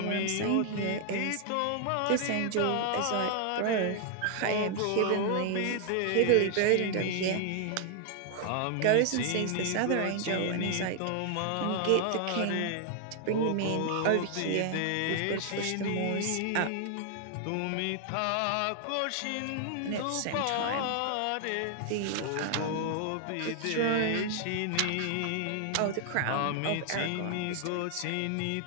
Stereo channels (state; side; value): different; both; correlation 0.00